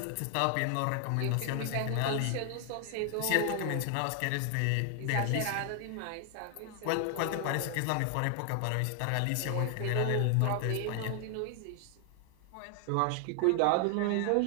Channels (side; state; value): both; different; correlation 0.00